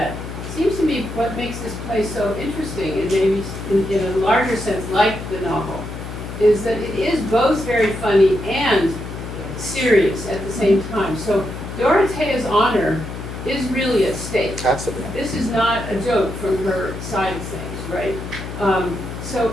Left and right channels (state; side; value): noise; left; hum, 9 dB below the sound